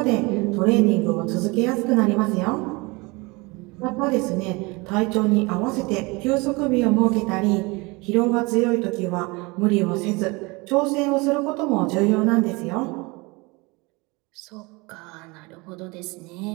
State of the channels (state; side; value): quieter; left; 25.8 dB